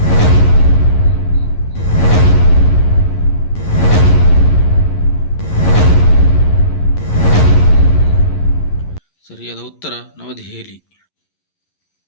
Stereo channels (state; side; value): late; right; 11 ms